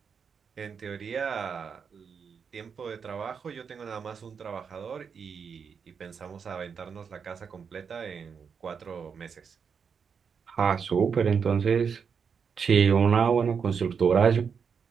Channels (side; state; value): left; quieter; 6.4 dB